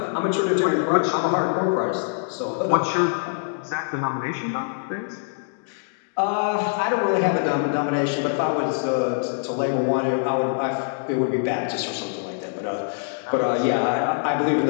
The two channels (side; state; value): right; silent; digital silence